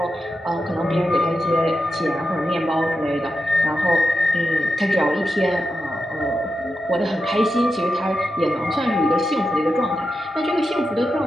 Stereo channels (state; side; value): normal; both; correlation 0.89